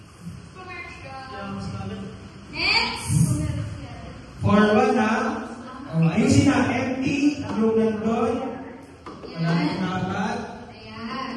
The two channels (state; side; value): identical; both; correlation 1.00